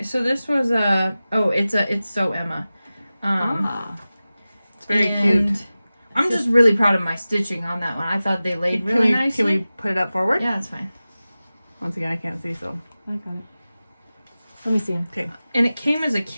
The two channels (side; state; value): both; inverted; correlation -0.96